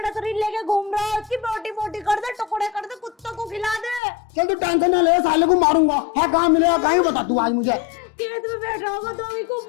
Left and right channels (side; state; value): right; drops out; at 4.0 s